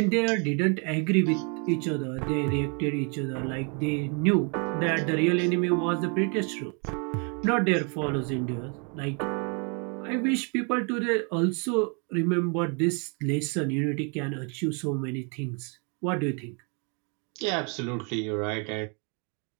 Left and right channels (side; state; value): left; quieter; 36.4 dB